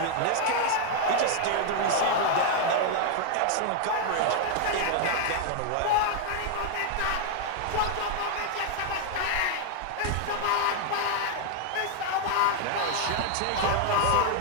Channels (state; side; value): different; both; correlation 0.00